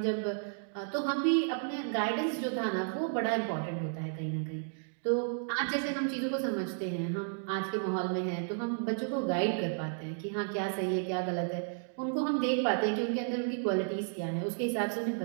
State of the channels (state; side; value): silent; left; digital silence